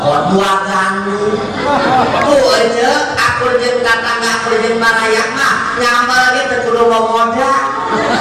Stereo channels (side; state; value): both; identical; correlation 1.00